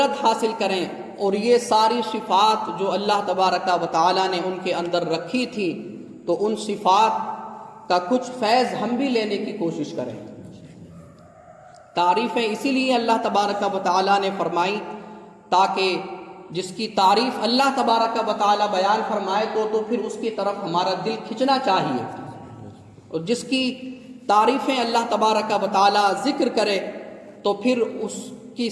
حاصل کریں، اور یہ ساری صفات جو اللہ تبارک و تعالی نے ان کے اندر رکھی تھی، تو ان صفات کا کچھ فیض ہم بھی لینے کی کوشش کریں. تعریفیں اسی لیے اللہ تبارک و تعالی نے فرمائی تاکہ جس کی تعریف اللہ تبارک و تعالی بیان فرمائے تو پھر اس کی طرف ہمارا دل کھنچنا چاہیے، اور جس کی تعریفیں اللہ تبارک و تعالی ذکر کرے تو پھر اس کی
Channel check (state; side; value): identical; both; correlation 1.00